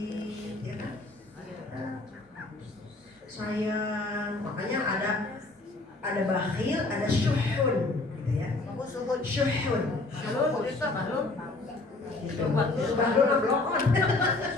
ya kan? Sayang, makanya ada bakhil, ada syuhun, gitu ya. Syuhun. Bahlul blokon.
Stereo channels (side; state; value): right; quieter; 3.2 dB